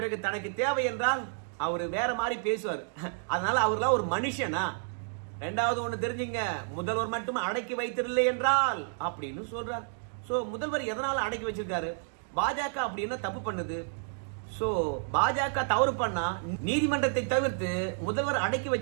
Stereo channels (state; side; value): silent; left; digital silence